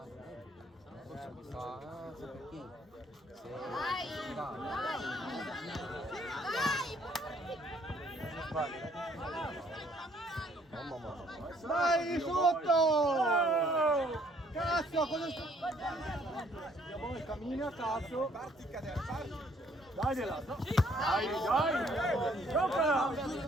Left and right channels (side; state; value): both; normal; correlation 0.64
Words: Dai, sotto! Cazzo, cosa sta? Cammina, cazzo. Parti, cadere, parti. Dagliela! Dai, dai! Giocala!